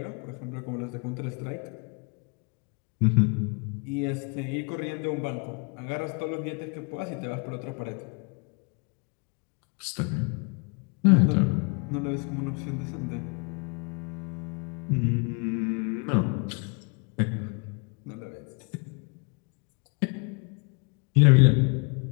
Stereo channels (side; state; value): right; quieter; 34.0 dB